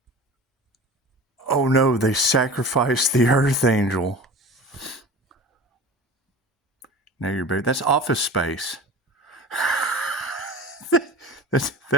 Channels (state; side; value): normal; both; correlation 0.37